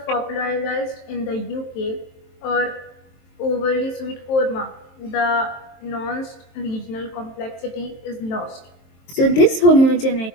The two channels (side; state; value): right; late; 23 ms